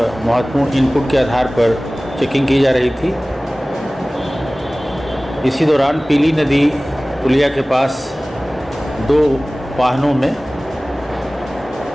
महत्वपूर्ण इनपुट के आधार पर चेकिंग की जा रही थी। इसी दौरान पीली नदी पुलिया के पास 2 वाहनों में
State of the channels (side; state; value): both; normal; correlation 0.98